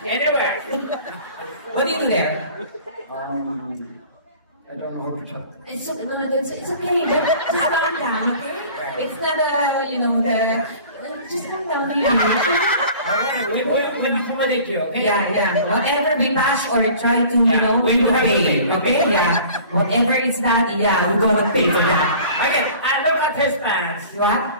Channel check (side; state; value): both; inverted; correlation -0.46